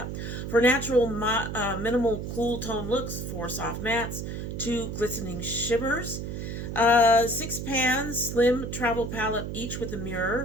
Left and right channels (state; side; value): noise; right; hum, 6 dB below the sound